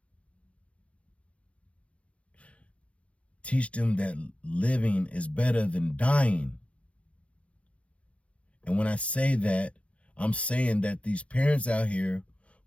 Teach them that living is better than dying. And when I say that, I'm saying that these parents out here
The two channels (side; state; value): right; late; 0.063 ms